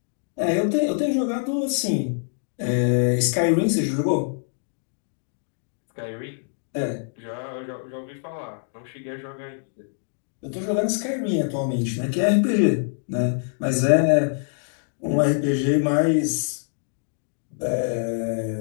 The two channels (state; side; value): silent; right; digital silence